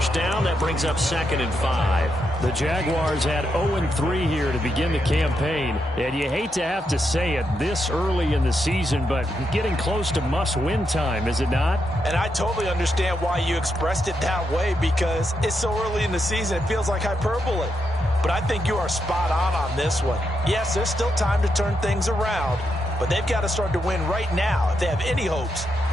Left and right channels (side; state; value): both; normal; correlation 0.82